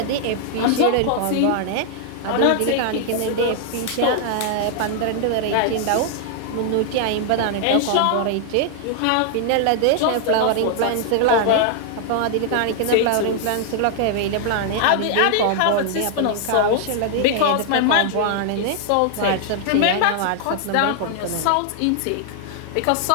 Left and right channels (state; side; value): different; both; correlation 0.00